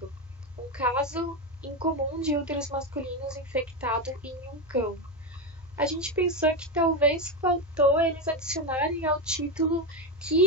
um caso incomum de úteros masculinos infectado em um cão. A gente pensou que talvez faltou eles adicionarem ao título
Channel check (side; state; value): both; normal; correlation 0.11